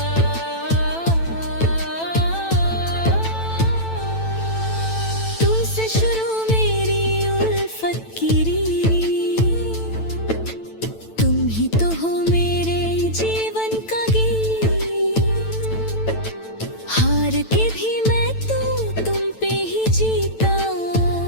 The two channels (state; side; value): late; right; 9.0 ms